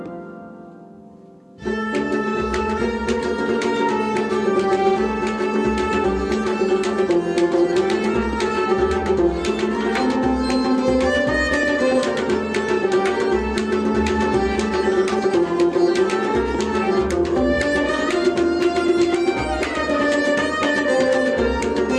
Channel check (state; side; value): identical; both; correlation 1.00